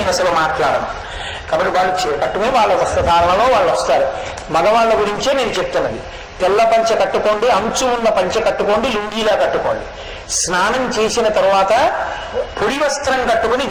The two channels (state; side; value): identical; both; correlation 1.00